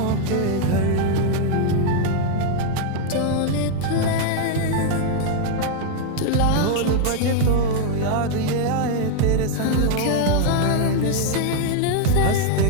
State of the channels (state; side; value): different; both; correlation 0.00